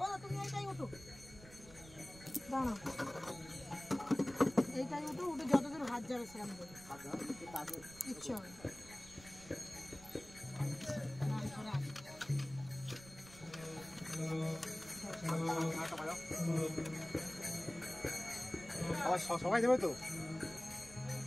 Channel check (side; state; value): right; noise; rumble, 18 dB below the sound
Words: তুমি এইটাই ওঠো, দাঁড়াও, এইটাই ওঠো, উঠে যতদূর হাত যাবে সেরকম দেবে, ইচ্ছে হবে। আবার সবাই দেবে তো?